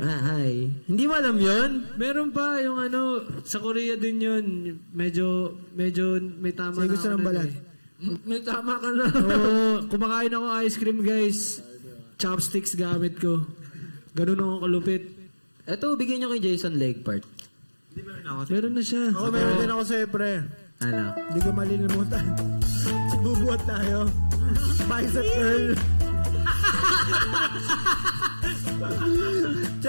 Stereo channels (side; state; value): both; inverted; correlation -1.00